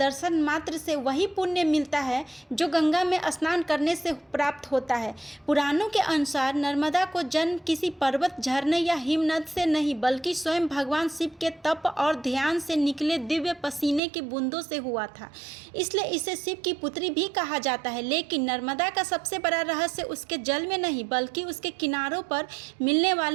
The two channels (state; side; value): drops out; left; at 14.0 s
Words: मात्र से वही पुण्य मिलता है जो गंगा में स्नान करने से प्राप्त होता है? पुराणों के अनुसार नर्मदा को जन्म किसी पर्वत, झरने या हिमनद से नहीं बल्कि स्वयं भगवान शिव के तप और ध्यान से निकले दिव्य पसीने की बूंदों से हुआ था। इसलिए इसे शिव की पुत्री भी कहा जाता है। लेकिन नर्मदा का सबसे बड़ा रहस्य उसके जल में नहीं बल्कि उसके किनारों पर मिलने